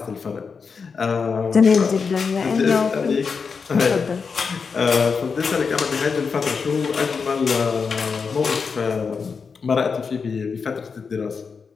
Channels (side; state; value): right; quieter; 5.4 dB